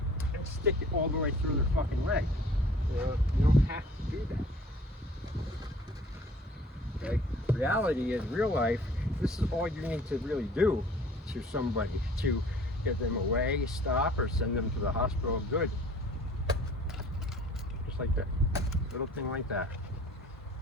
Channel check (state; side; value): normal; both; correlation 0.51